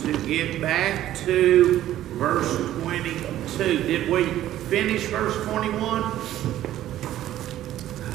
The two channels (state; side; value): quieter; left; 13.1 dB